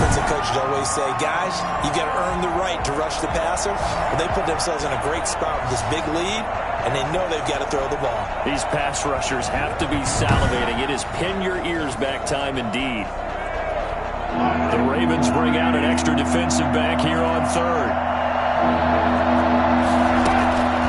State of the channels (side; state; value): both; identical; correlation 1.00